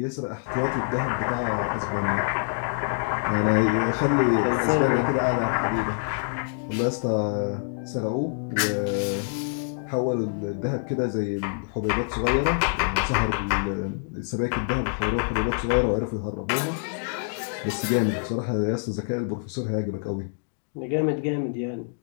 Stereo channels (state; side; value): silent; right; digital silence